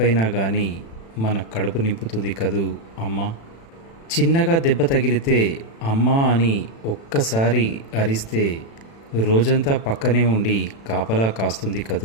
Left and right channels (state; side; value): late; right; 36 ms